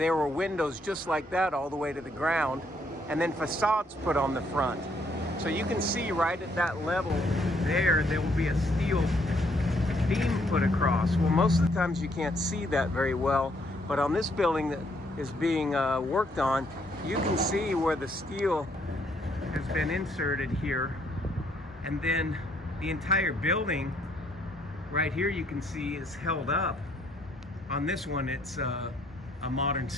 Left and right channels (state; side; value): normal; both; correlation 0.69